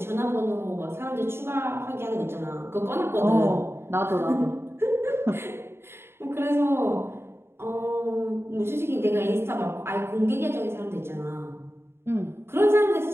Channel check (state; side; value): late; left; 0.12 ms